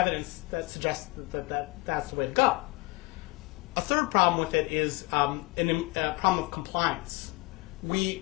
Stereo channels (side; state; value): right; quieter; 24.5 dB